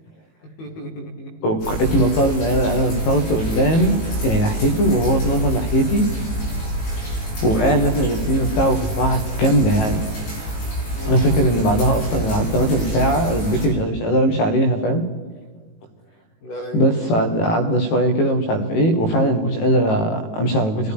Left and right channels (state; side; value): late; right; 18 ms